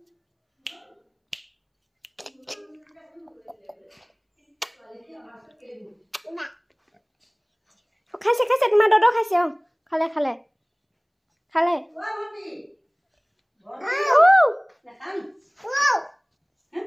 খাইছে খাইছে তোমাৰ দদ খাইছে খালে খালে খালে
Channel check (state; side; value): identical; both; correlation 1.00